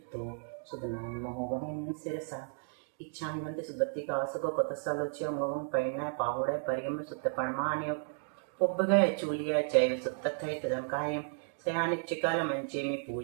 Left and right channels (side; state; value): left; silent; 55 dB below the other